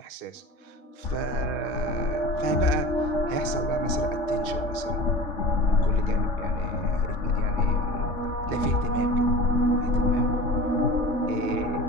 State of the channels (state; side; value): late; right; 3.5 ms